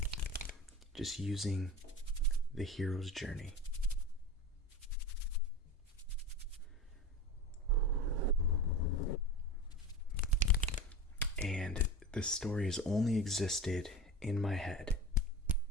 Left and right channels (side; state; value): both; normal; correlation 0.30